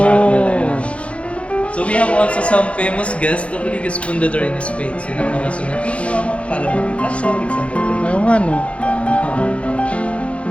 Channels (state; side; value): late; right; 0.062 ms